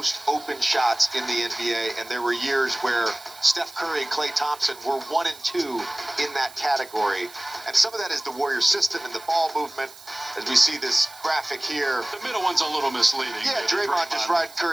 open shots in the NBA? And there were years where Steph Curry and Klay Thompson were 1 and 2 in that category. And some of that is the Warriors system and the ball movement. As we see this graphic here. The middle one's a little misleading. Yeah, Draymond just riding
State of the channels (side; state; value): right; noise; hiss, 19 dB below the sound